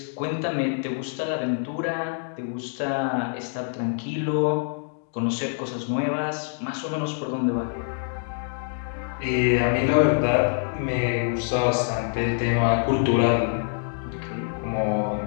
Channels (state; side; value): silent; right; digital silence